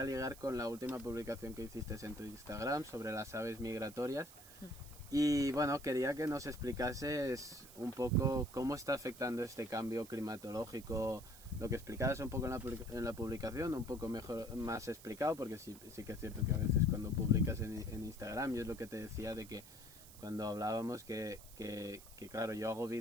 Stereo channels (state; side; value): noise; right; hiss, 18 dB below the sound